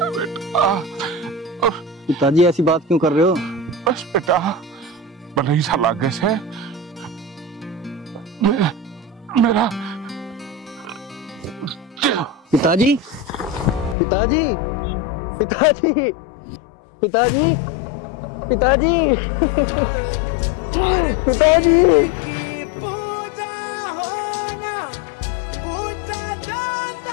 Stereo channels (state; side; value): drops out; right; at 14.0 s